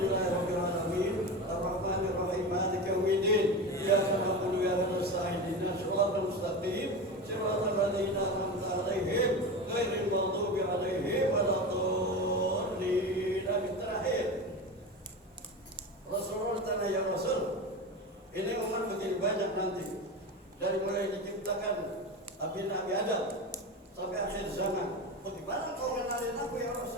alamin. Arrahmanirrahim. Maliki yaumiddin. Iyyaka na'budu wa iyyaka nasta'in. Ihdinas siratal mustaqim. Siratal ladzina an'amta 'alaihim ghairil maghdubi 'alaihim waladdallin. Terakhir, Rasulullah tanya, ya Rasul, ini umat begini banyak nanti, dari mulai diciptakan Nabi Adam sampai akhir zaman. Bagaimana kau kenalin aku ya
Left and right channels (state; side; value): normal; both; correlation 0.24